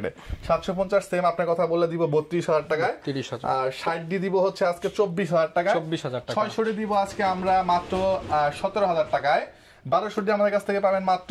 750 সেম আপনার কথা বললে দিব 32,000 টাকায়। আর 60 দিব হচ্ছে আজকে 24,000 টাকা। 600 দিব আজকে আমরা মাত্র 17,000 টাকায়। 1200 আমাদের কাছ থেকে পাবেন মাত্র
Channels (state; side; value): identical; both; correlation 1.00